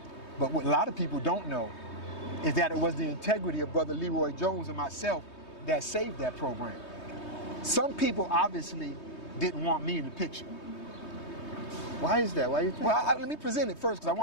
But what a lot of people don't know is that it was the integrity of Brother Leroy Jones and myself that saved that program. Some people obviously didn't want me in the picture. Why is that? Why you think? Well, let me present it first, because I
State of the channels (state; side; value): late; right; 3.2 ms